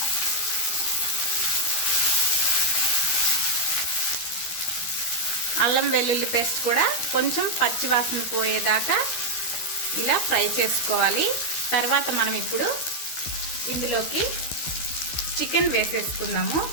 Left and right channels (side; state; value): right; late; 13 ms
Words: అల్లం వెల్లుల్లి పేస్ట్ కూడా కొంచెం పచ్చివాసన పోయేదాకా ఇలా ఫ్రై చేసుకోవాలి. తర్వాత మనం ఇప్పుడు ఇందులోకి చికెన్ వేసేసుకుందాము.